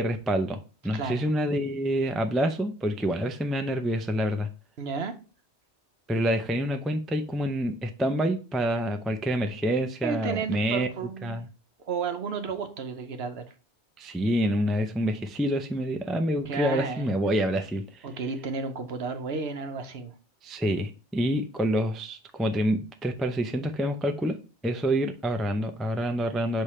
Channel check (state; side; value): normal; both; correlation 0.67